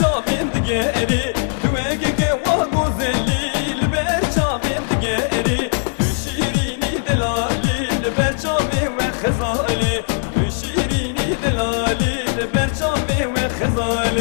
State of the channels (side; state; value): right; silent; digital silence